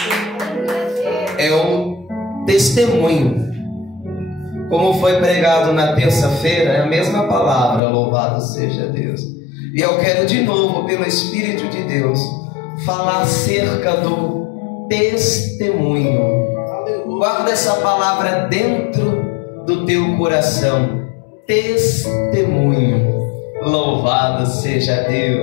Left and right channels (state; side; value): drops out; right; at 7.8 s